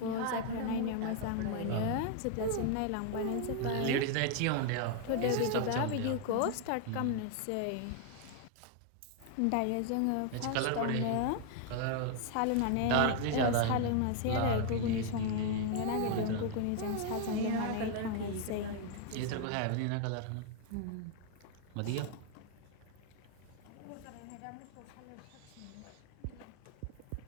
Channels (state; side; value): different; both; correlation 0.00